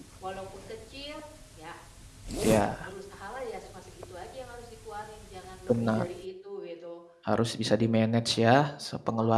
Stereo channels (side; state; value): both; identical; correlation 1.00